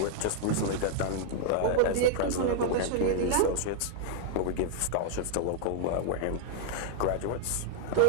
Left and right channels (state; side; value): different; both; correlation -0.01